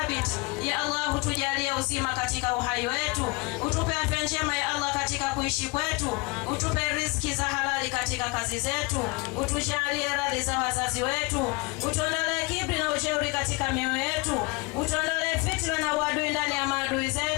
ya Allah. Tujalie uzima katika uhai wetu, utupe afya njema ya Allah katika kuishi kwetu, utupe riziki za halali katika kazi zetu, utujalie radhi za wazazi wetu, utuondolee kibri na ujeuri katika mioyo yetu, utuondolee fitna na uadui ndani ya maadui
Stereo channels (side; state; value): right; quieter; 27.2 dB